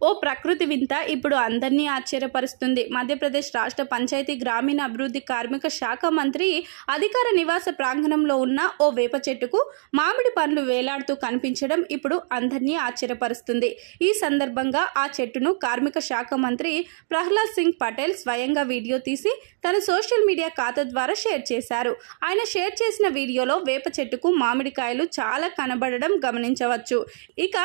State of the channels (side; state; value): left; silent; digital silence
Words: ఓ ప్రకృతి వింత ఇప్పుడు అందరినీ ఆశ్చర్యపరుస్తుంది. మధ్యప్రదేశ్ రాష్ట్ర పంచాయతీ గ్రామీణ అభివృద్ధి కార్మిక శాఖ మంత్రి అధికార నివాస ప్రాంగణంలో ఉన్న ఓ వేప చెట్టుకు మామిడి పండ్లు వేలాడుతూ కనిపించడం ఇప్పుడు అందరినీ ఆశ్చర్యపరుస్తుంది. ఈ సందర్భంగా ఆ చెట్టును కార్మిక శాఖ మంత్రి ప్రహ్లాద్ సింగ్ పటేల్ స్వయంగా వీడియో తీసి తన సోషల్ మీడియా ఖాతా ద్వారా షేర్ చేశారు. ఆయన షేర్ చేసిన వీడియోలో వేప చెట్టుకు మామిడికాయలు చాలా కనబడడం గమనించవచ్చు. ఇక